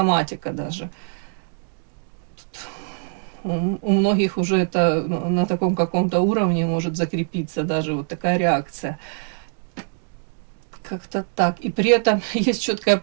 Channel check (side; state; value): left; silent; 57 dB below the other